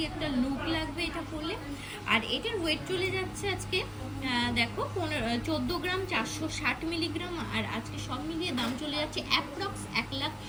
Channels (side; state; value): both; identical; correlation 1.00